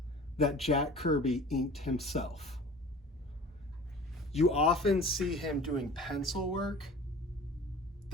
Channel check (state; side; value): normal; both; correlation 0.42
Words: that Jack Kirby inked himself. You often see him doing pencil work